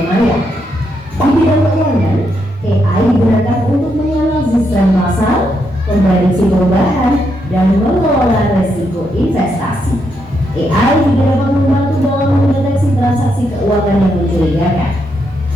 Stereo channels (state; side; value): normal; both; correlation 0.79